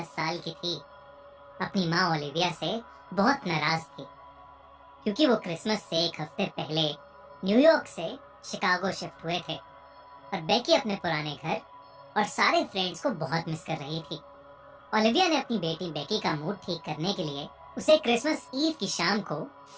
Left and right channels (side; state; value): both; identical; correlation 1.00